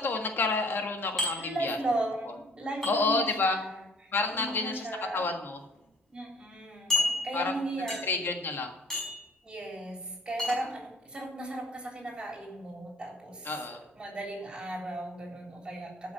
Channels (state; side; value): normal; both; correlation 0.55